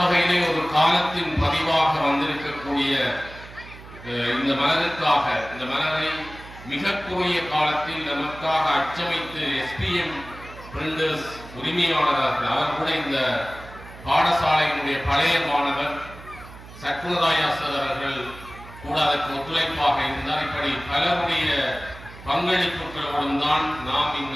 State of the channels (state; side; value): noise; right; hum, 17 dB below the sound